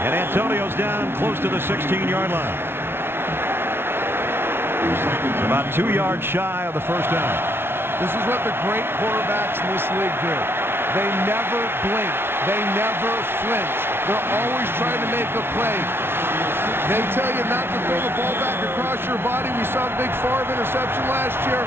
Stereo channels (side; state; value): left; late; 0.11 ms